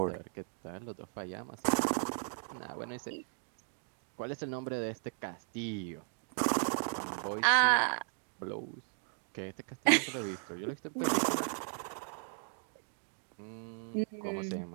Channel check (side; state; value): left; silent; 53 dB below the other